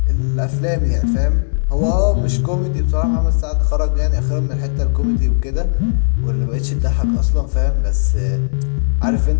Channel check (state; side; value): silent; right; 68 dB below the other